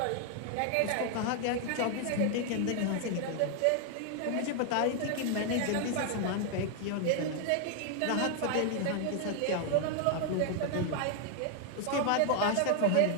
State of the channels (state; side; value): different; both; correlation 0.00